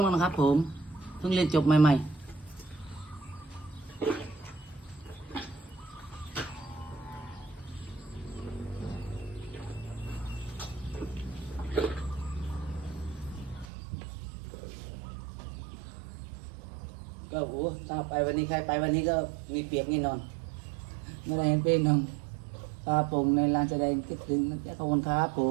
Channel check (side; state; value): left; drops out; at 13.7 s